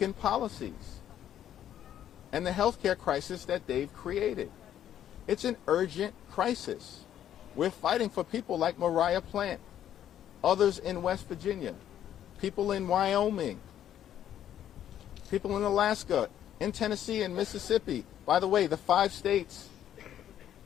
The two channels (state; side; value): quieter; right; 10.8 dB